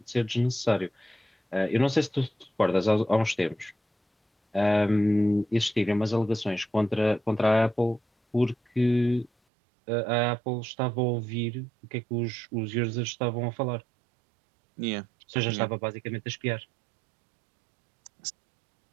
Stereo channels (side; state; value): left; drops out; at 9.3 s